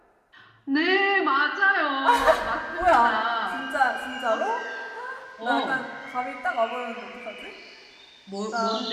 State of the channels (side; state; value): both; identical; correlation 1.00